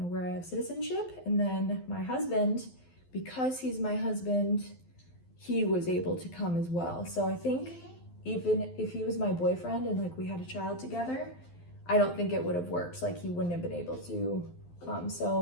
where I have citizenship. And then my husband, because he's my husband, he was able to come as well. So I think even if he was my boyfriend and like we had a child together, I don't think it would have worked. Like he wouldn't have been able to come.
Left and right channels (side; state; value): right; late; 12 ms